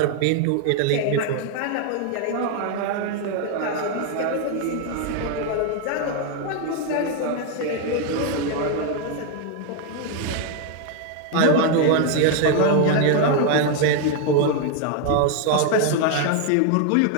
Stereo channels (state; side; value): different; both; correlation 0.01